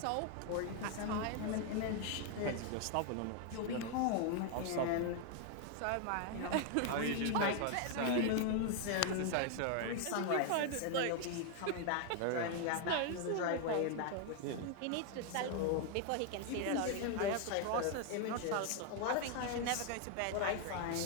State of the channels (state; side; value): different; both; correlation 0.01